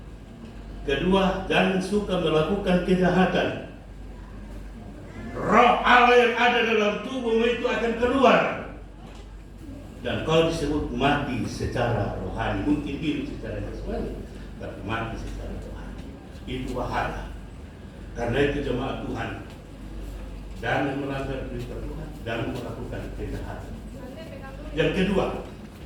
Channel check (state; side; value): identical; both; correlation 1.00